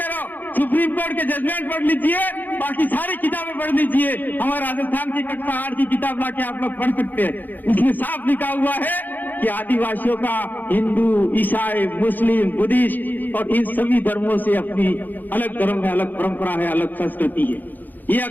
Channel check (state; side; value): late; right; 0.086 ms